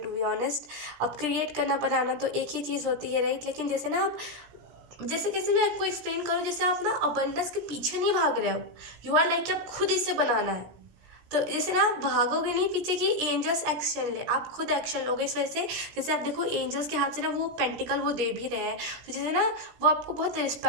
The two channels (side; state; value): left; late; 17 ms